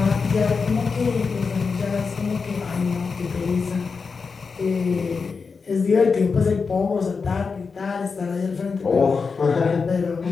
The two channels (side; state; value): right; quieter; 5.0 dB